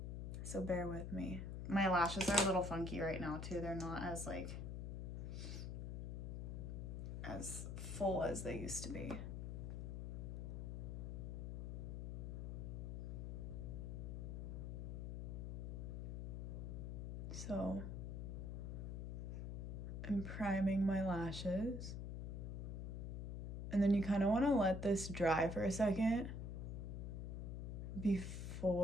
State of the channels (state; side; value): noise; left; hum, 4 dB below the sound